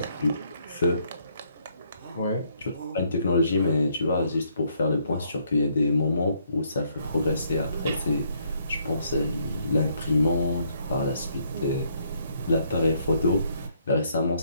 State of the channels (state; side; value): inverted; both; correlation -0.70